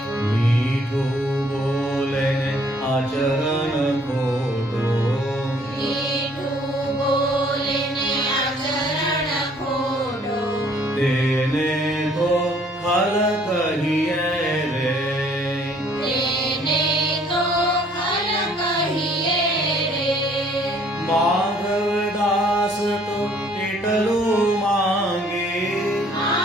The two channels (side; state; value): both; normal; correlation 0.60